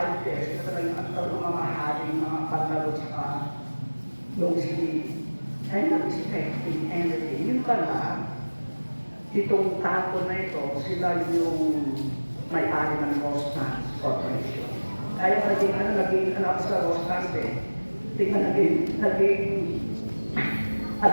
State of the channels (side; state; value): both; inverted; correlation -1.00